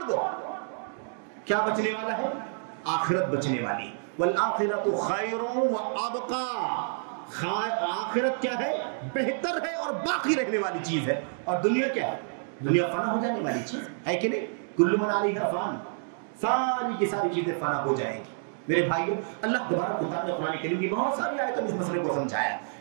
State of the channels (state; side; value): silent; left; digital silence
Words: دو. کیا بچنے والا ہے؟ آخرت بچنے والی. والآخرۃ خیر وابقی. آخرت کیا ہے؟ بہتر ہے اور باقی رہنے والی چیز ہے. اور دنیا کیا ہے؟ دنیا فنا ہو جانے والی چیز ہے کہ نہیں؟ کل من علیہا فان، ساری کی ساری چیزیں فنا ہو جائیں گی. میرے بھائیو، اللہ تبارک و تعالیٰ نے قرآن کریم کی بہت ساری آیتوں میں اس مسئلے کو سمجھایا.